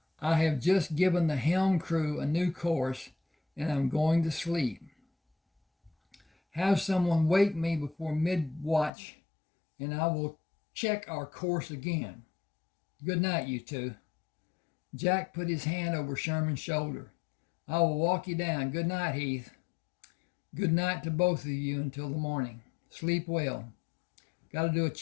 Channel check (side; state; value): right; drops out; at 8.9 s